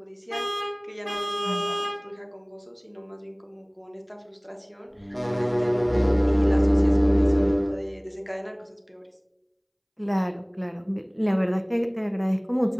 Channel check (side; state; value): both; identical; correlation 1.00